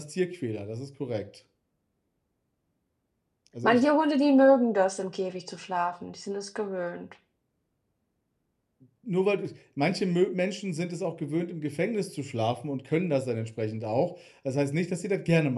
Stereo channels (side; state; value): both; identical; correlation 1.00